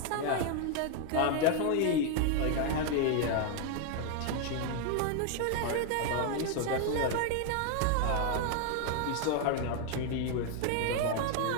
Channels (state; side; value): different; both; correlation 0.01